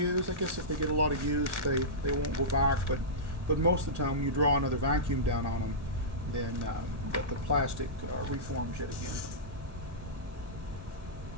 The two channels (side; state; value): left; late; 1.1 ms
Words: I guess if they get a lot of use, they won't go back. But most of the time, when you draw another vacuum down on them, then the plastic reforms yet again.